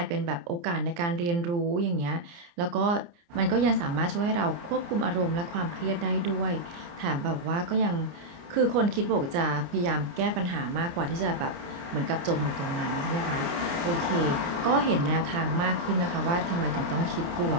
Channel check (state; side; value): late; left; 29 ms